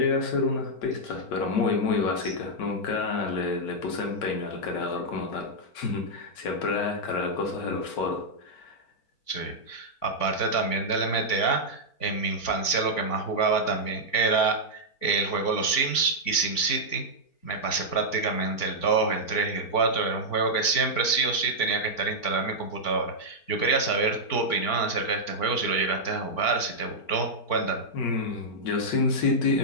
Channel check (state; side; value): late; right; 4.4 ms